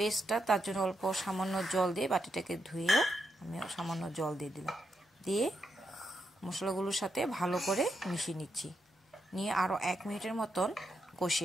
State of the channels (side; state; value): both; normal; correlation 0.82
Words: তার জন্য অল্প সামান্য জল দিয়ে বাটিটাকে ধুয়ে আমি সামান্য জল দিয়ে দিলাম, দিয়ে মশলাগুলোর সাথে ভালো করে মিশিয়ে নিচ্ছি, নিয়ে আরও 1 মিনিটের মতন